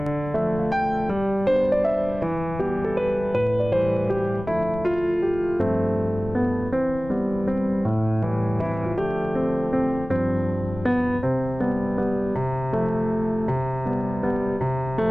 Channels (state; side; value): noise; left; rumble, 12 dB below the sound